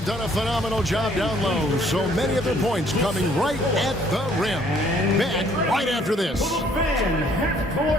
done a phenomenal job down low. So many of their points coming right at the rim. Back right after this.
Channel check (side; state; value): both; normal; correlation 0.62